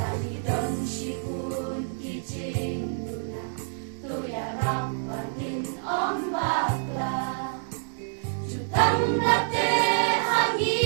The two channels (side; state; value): left; silent; digital silence